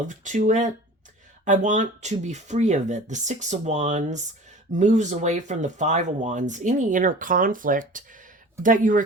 to it. I want to be free of it. The Six of Wands moves away from the Five of Wands, any inner conflict that you are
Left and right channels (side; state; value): both; normal; correlation 0.41